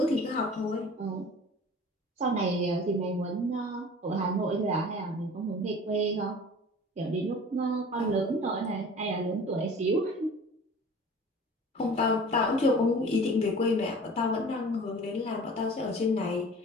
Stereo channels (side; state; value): both; normal; correlation 0.43